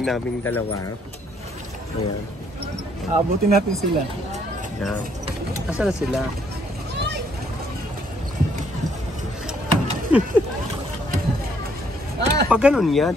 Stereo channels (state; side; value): normal; both; correlation 0.68